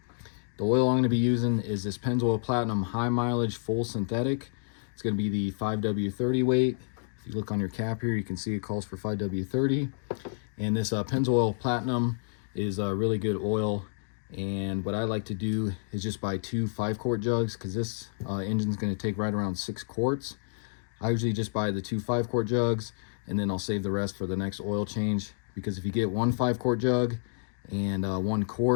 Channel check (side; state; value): right; silent; digital silence